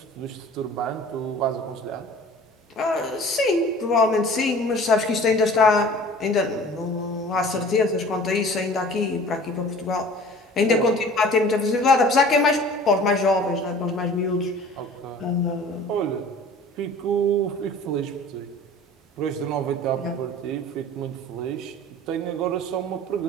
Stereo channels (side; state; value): both; normal; correlation 0.45